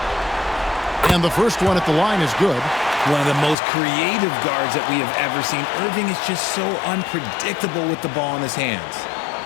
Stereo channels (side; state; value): right; drops out; at 3.6 s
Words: And the first one at the line is good. One of the most creative guards that we have ever seen. Irving is just so unpredictable with the ball in his hands.